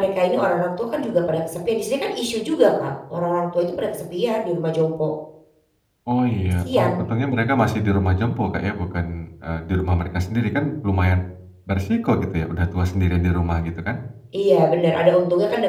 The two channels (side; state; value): both; identical; correlation 1.00